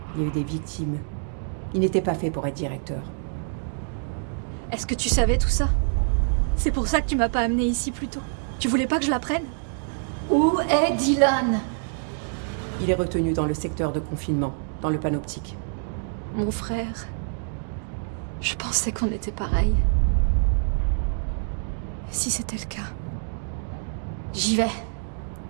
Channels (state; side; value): silent; left; digital silence